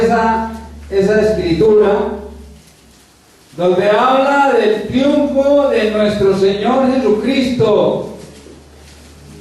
escritura, donde habla del triunfo de nuestro Señor Jesucristo.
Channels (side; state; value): both; identical; correlation 1.00